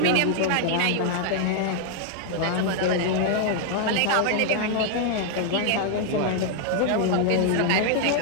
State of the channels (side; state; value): both; different; correlation 0.00